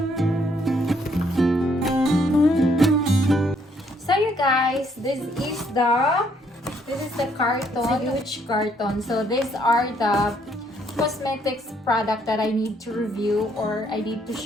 Guys, this is the carton. It's a huge carton. So these are the cosmetics product that I need to review, or I need to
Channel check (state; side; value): normal; both; correlation 0.68